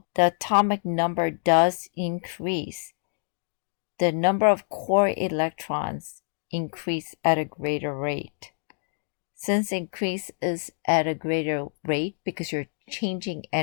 the atomic number does increase, the number of core electrons increase at a greater rate. Since increase is at a greater rate because you're changing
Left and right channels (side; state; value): right; silent; digital silence